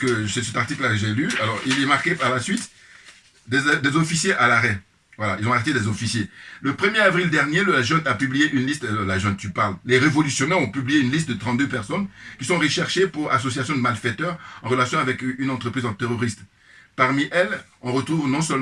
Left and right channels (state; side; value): identical; both; correlation 1.00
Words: c'est cet article-là que j'ai lu. Alors, il est marqué par la suite des officiers à l'arrêt. Voilà, ils ont arrêté des officiers. Le 1er avril dernier, la junte a publié une liste, la junte, tu parles, les révolutionnaires ont publié une liste de 32 personnes qui sont recherchées pour association de malfaiteurs en relation avec une entreprise en terroriste. Parmi elles, on retrouve non